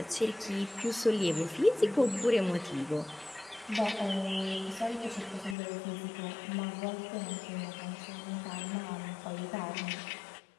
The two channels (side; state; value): right; drops out; at 5.6 s